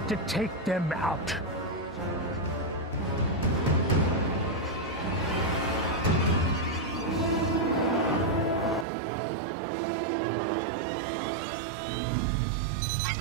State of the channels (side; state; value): left; drops out; at 8.8 s